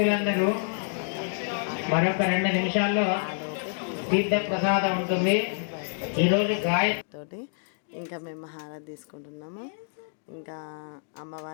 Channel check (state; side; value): silent; right; digital silence